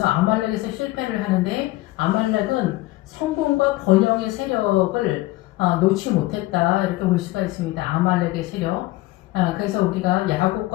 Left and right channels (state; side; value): quieter; right; 18.7 dB